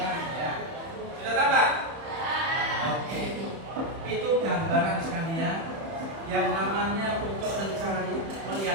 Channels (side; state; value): left; late; 31 ms